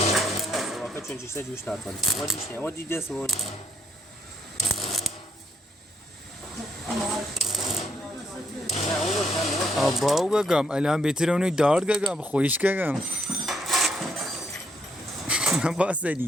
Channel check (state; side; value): normal; both; correlation 0.72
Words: واقعا چون چیزا جوش نکنه. ما دیش نه. ما دیده سون. آباو گم الان بهتره اونو دار گم خویش گم.